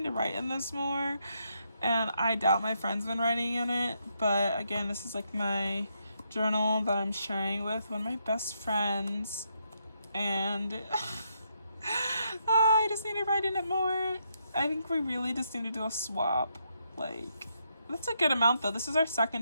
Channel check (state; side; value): inverted; both; correlation -0.78